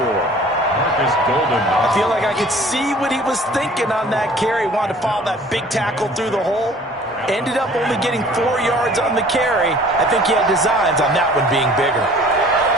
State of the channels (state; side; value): normal; both; correlation 0.50